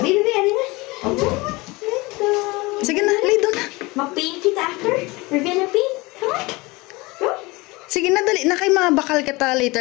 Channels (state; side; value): quieter; right; 23.5 dB